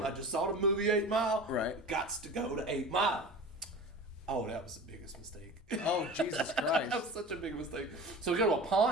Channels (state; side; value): normal; both; correlation 0.35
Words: I just saw the movie 8 Mile. Right. Gots to go to 8 Mile. Oh, that was the biggest mistake. Oh, Jesus Christ. That was such a big mistake. So we go to a